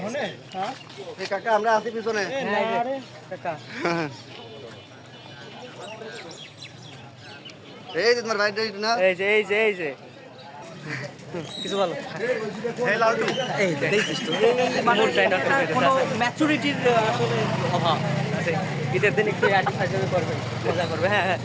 হনে। হ্যাঁ এই কাকা আমরা আছি পিছনে। আরে কাকা, এই যে তোমার বাইরে না, এই যে কিছু বলো। এই দেখিস তো কোনো ম্যাচুরিটির আসলে অভাব আছে। ঈদের দিন একটু আর্টি ফাইজে করবে, মজা করবে। হ্যাঁ,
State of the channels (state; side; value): identical; both; correlation 1.00